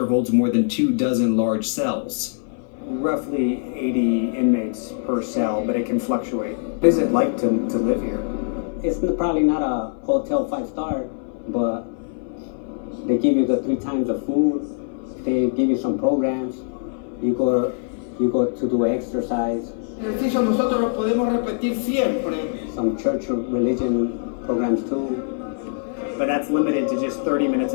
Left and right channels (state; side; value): silent; right; 61 dB below the other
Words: holds more than 24 large cells. Roughly 80 inmates per cell, but it can fluctuate. What is it like to live here? It's probably not a hotel 5-star, but they give you the 3 times of food. They give you some programs. You go to do exercise. Ejercicio nosotros lo podemos repetir siempre. Some church or religion programs too. But that's limited to just 30 minutes